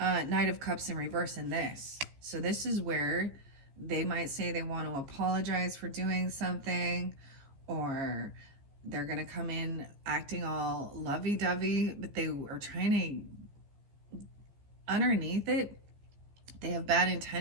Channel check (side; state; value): left; late; 14 ms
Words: of Cups in reverse in this. So this is where they might say they want to apologize for doing something, or they're going to come in acting all lovey-dovey, but they are trying to, underneath it, they have bad